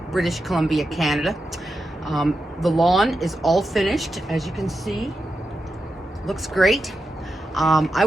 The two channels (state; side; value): normal; both; correlation 0.88